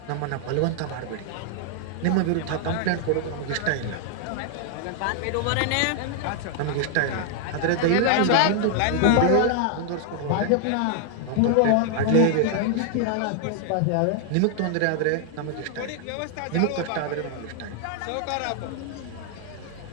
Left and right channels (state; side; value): different; both; correlation 0.00